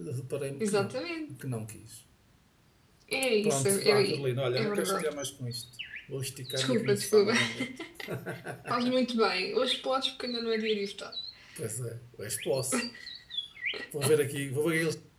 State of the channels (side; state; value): both; identical; correlation 1.00